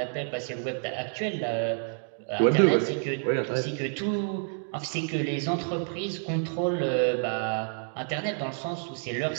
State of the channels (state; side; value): silent; left; 59 dB below the other